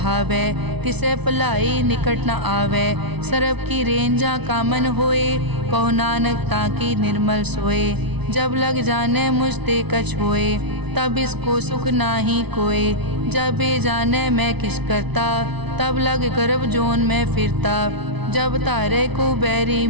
तिसे भलाई निकट न आवै। सरब की रेंजा कामन होए, कहो नानक ताकि निर्मल सोए। जब लग जाने मुझ ते कछ होए, तब इसको सुख नाही कोय। जब ये जाने मैं किस करता, तब लग गर्भ जोन में फिरता। जब तारे को बैरी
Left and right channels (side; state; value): left; late; 0.99 ms